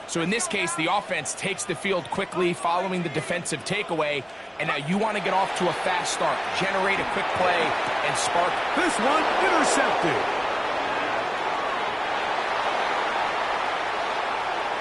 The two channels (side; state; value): both; identical; correlation 1.00